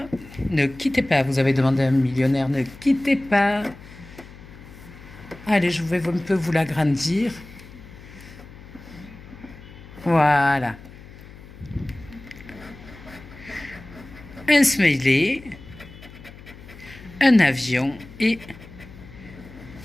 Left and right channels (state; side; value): noise; left; hum, 18 dB below the sound